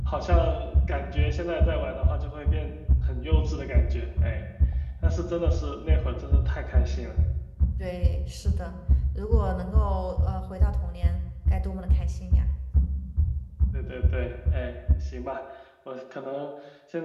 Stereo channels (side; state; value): both; identical; correlation 1.00